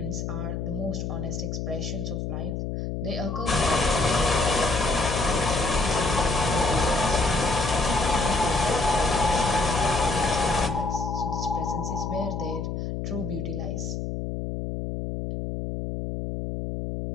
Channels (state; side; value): noise; left; hum, 4 dB below the sound